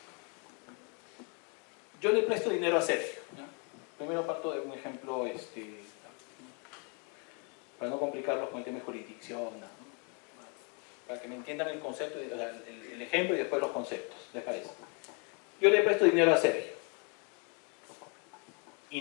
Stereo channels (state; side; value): quieter; right; 35.8 dB